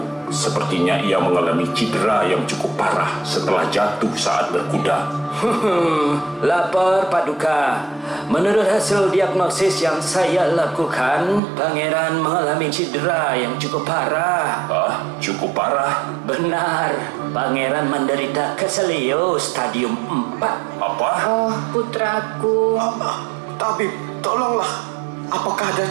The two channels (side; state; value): left; drops out; at 11.4 s